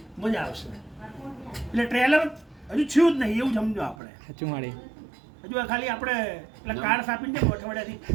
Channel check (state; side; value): drops out; left; at 4.0 s